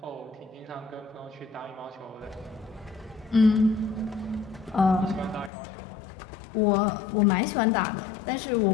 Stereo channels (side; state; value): right; drops out; at 5.5 s